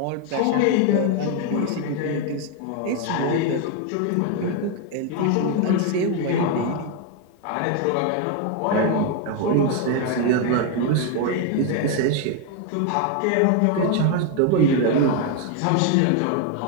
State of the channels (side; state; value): both; different; correlation 0.01